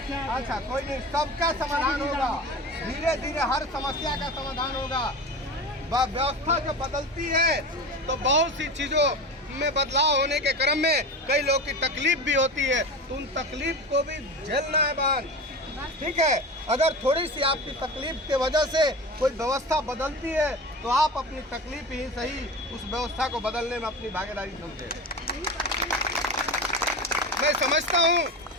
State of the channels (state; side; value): normal; both; correlation 0.29